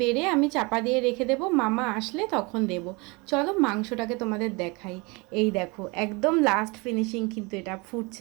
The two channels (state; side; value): quieter; left; 27.4 dB